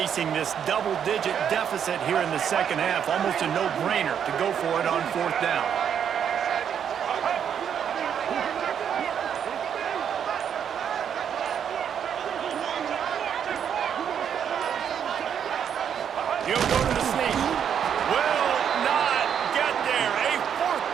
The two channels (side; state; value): left; quieter; 8.3 dB